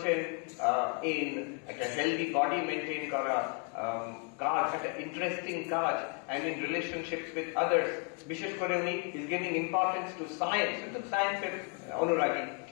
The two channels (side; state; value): right; quieter; 37.7 dB